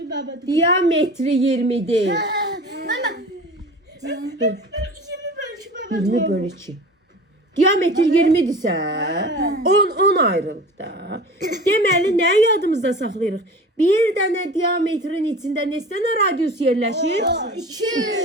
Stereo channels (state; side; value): normal; both; correlation 0.38